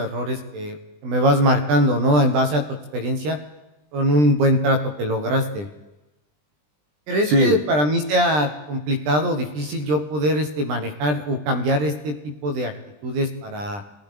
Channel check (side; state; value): left; late; 20 ms